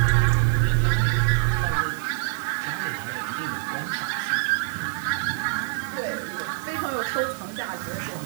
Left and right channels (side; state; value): left; silent; digital silence